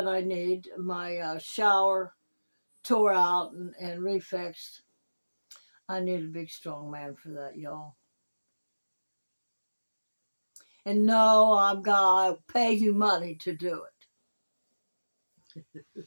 I need, my shower tore out and refixed, I need a big, strong man for that, y'all. And no, I'm going to pay you money to do it.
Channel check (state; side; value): inverted; both; correlation -1.00